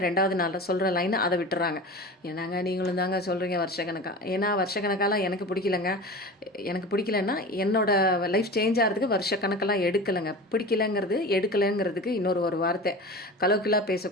2வது நாளில் சொல்கிற லைனை அதை விட்டுறாங்க. ஏன்னாங்க நீங்களும் தாங்க சொல்கிறீங்க வருஷக்கணக்காக. ஏன்னா வருஷக்கணக்காலாம் எனக்கு பிடிக்கலங்க. எனக்கு பிடிக்கலன்னா என்னோட லைஃப் சேஞ்ச் ஆகிறதுக்கு வருஷக்கணக்கெல்லாம் எடுக்கலைங்க. பிடிக்கலைங்கிறது எடுக்கலைங்கிறதுக்கு ஒரு வார்த்தை, கலோக்கியலாக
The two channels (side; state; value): both; normal; correlation 0.33